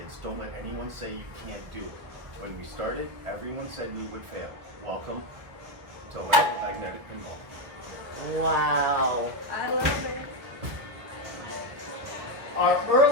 Don't let anyone say you can't do it. When we started, everyone said we would fail. Welcome to Electromagnetic Pinball. Wow. I love it. Our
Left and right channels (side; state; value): left; late; 1.7 ms